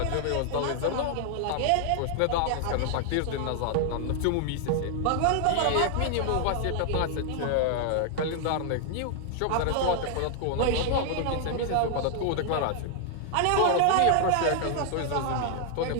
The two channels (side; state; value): both; different; correlation 0.00